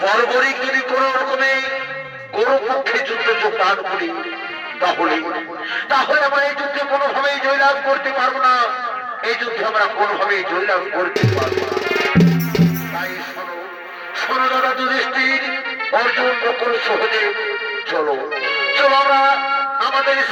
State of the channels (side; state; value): both; identical; correlation 1.00